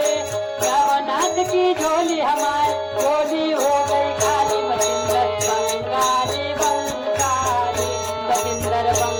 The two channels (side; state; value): both; identical; correlation 1.00